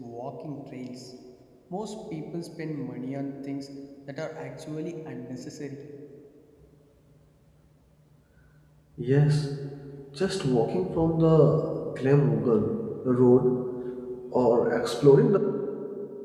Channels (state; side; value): identical; both; correlation 1.00